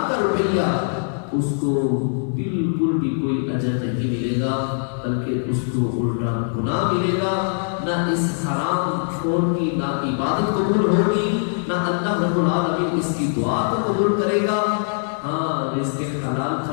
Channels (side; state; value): right; silent; digital silence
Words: کا روپیہ، اس کو بالکل بھی کوئی اجر نہیں ملے گا، بلکہ اس کو الٹا گناہ ملے گا۔ نہ اس حرام خور کی نہ عبادت قبول ہوگی، نہ اللہ رب العالمین اس کی دعا کو قبول کرے گا۔ ہاں رزق حلال